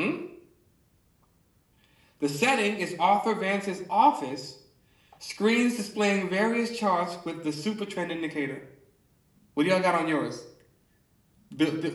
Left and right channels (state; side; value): identical; both; correlation 1.00